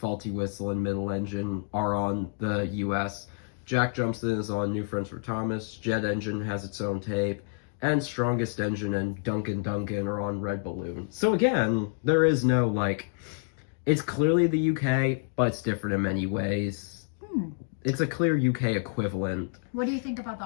Whistle, and Middle Engine are on the US. Jack Jumps In is on New Friends for Thomas. Jet Engine has its own tape. and Strongest Engine and Duncan Duncan are on Red Balloon. So again, there is no, like, it's clearly the UK, but it's different in many ways. It's a clear UK equivalent. What do you think about the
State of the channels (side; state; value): right; silent; digital silence